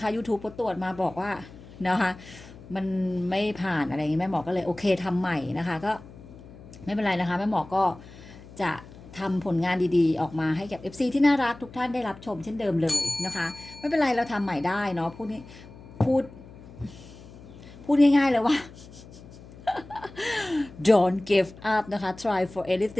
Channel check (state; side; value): noise; left; hum, 18 dB below the sound